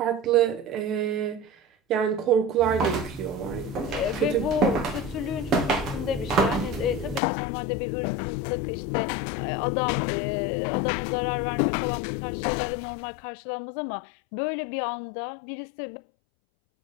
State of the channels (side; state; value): right; drops out; at 7.2 s